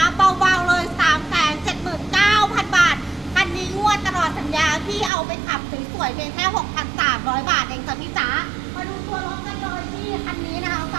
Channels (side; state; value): left; drops out; at 5.1 s